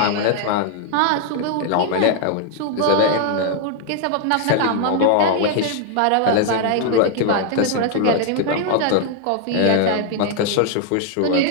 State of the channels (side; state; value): both; different; correlation 0.00